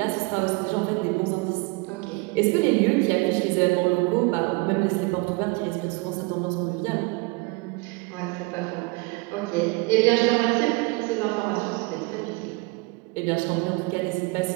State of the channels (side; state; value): left; quieter; 26.0 dB